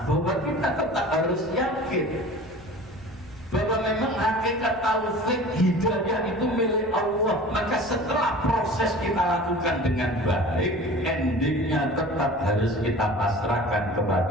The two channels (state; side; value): noise; right; rumble, 23 dB below the sound